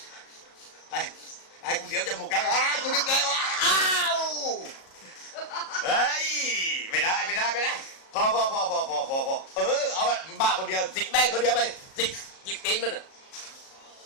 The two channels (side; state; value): right; late; 37 ms